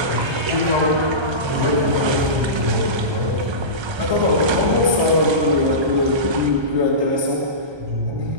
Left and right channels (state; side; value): late; left; 1.3 ms